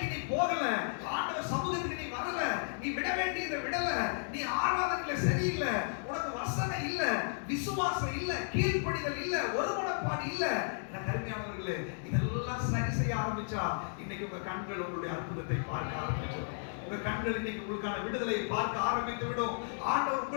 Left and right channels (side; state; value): right; silent; digital silence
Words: நீ போகல, ஆண்டவர் சமூகத்துக்கு நீ வரல, நீ விட வேண்டியதை விடல, நீ ஆராதனையில சரியில்லை, உனக்கு வசனம் இல்ல, விசுவாசம் இல்ல, கீழ்ப்படிதல் இல்ல, ஒருமனப்பாடு இல்ல. எனக்கு அருமையானவர்களே, இதெல்லாம் சரி செய்ய ஆரம்பிச்சா இன்னைக்கு உங்க கண்கள் உங்களுடைய அற்புதத்தை பார்க்க ஆரம்பிச்சிடும். உங்க கண்கள் இன்னைக்கு உங்களுக்கான விடுதலை பார்க்க ஆரம்பித்து விடும். ஆண்டவர்